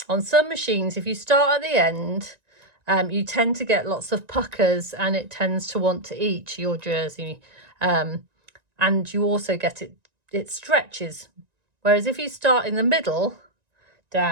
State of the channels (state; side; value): late; left; 1.9 ms